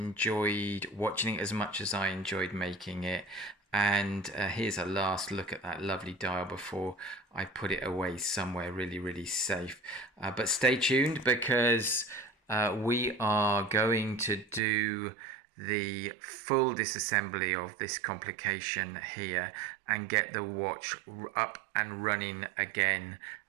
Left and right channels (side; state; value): left; drops out; at 14.6 s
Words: watching it as much as I enjoyed making it. And here's a last look at that lovely dial before I put it away somewhere really, really safe. But stay tuned, because we are going to do the full disassembly of this complication here and get the watch up and running again,